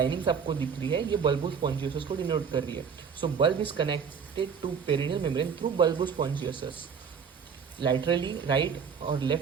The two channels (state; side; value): quieter; left; 6.5 dB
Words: आपको दिख रही है ये बल्बोस्पॉन्जियोसस को डिनोट कर रही है। So bulb is connected to perineal membrane through bulbospongiosus. Laterally right और